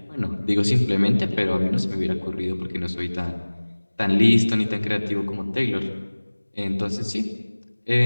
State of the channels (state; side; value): inverted; both; correlation -1.00